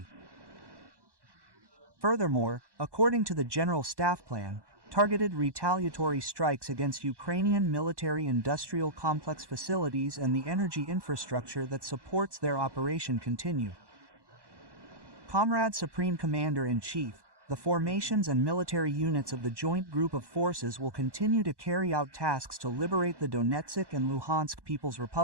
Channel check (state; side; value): late; left; 1.1 ms